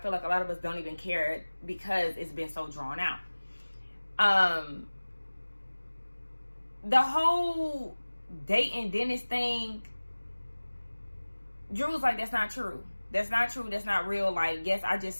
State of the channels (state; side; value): inverted; both; correlation -1.00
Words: like a lot of us don't even care because it's been so drawn out. The whole dating Dennis thing, Drew was like, that's not true. That's not true. That's not real. Like, yes, I just